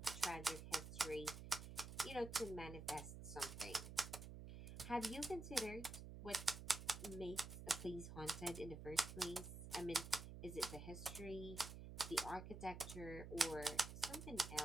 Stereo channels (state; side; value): noise; right; hum, 9 dB below the sound